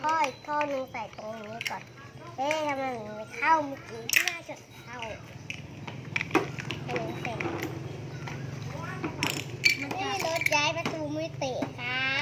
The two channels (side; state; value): both; identical; correlation 1.00